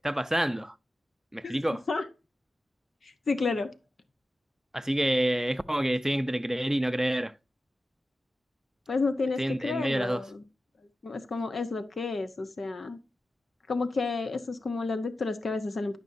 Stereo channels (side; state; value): both; normal; correlation 0.93